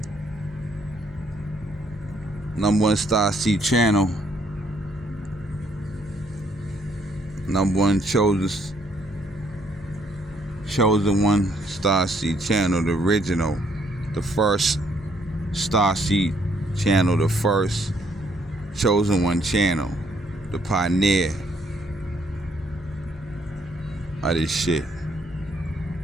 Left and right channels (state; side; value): normal; both; correlation 0.69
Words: #1 Star C channel. #1 chosen one Star C channel, the original, the first Star C channel, the first chosen one channel, the pioneer of this shit.